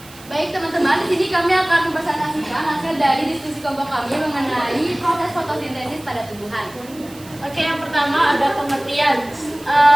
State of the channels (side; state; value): right; noise; hiss, 21 dB below the sound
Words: Baik teman-teman, di sini kami akan mempresentasikan hasil dari diskusi kelompok kami mengenai proses fotosintesis pada tumbuhan. Oke, yang pertama ada pengertian.